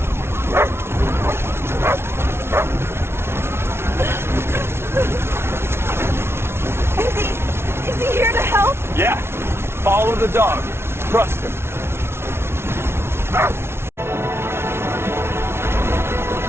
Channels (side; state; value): left; late; 0.12 ms